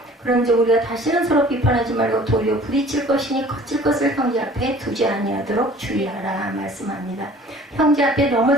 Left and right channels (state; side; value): normal; both; correlation 0.49